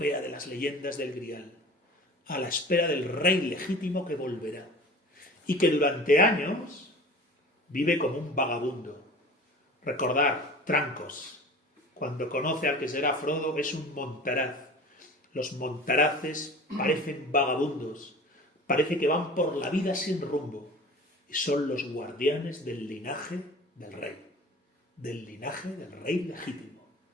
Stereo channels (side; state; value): both; normal; correlation 0.40